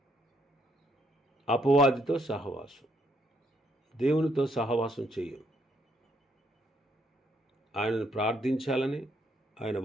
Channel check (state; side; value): normal; both; correlation 0.72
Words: అపవాదితో సహవాసం, దేవునితో సహవాసం చేయం. ఆయనను ప్రార్థించాలని, ఆయన